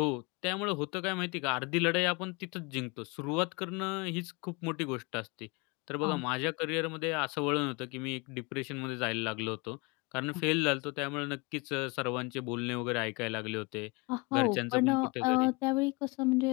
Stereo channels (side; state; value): right; quieter; 27.7 dB